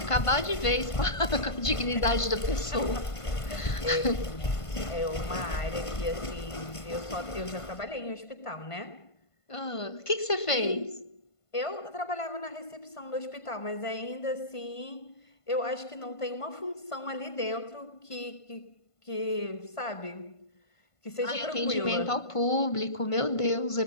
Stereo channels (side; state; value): right; late; 1.5 ms